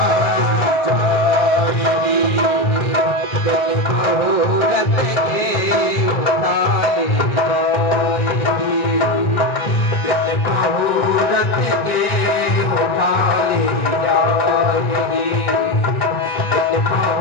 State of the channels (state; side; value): late; right; 1.6 ms